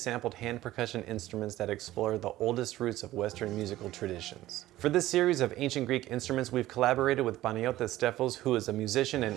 hand percussion instruments that explore the oldest roots of Western musical traditions. For this series of Ancient Greek instruments, we've collaborated with Panagiotis Stefos, who is a musician and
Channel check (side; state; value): left; quieter; 15.5 dB